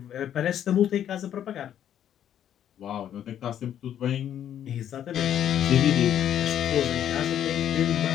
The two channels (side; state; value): right; quieter; 10.2 dB